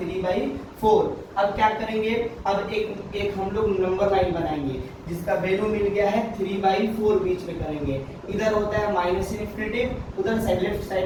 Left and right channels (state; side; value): identical; both; correlation 1.00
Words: अब क्या करेंगे, अब एक हम लोग नंबर लाइन बनाएंगे जिसका वैल्यू मिल गया है 3/4, बीच में करेंगे। इधर होता है माइनस इन्फिनिटी, उधर साइड लेफ्ट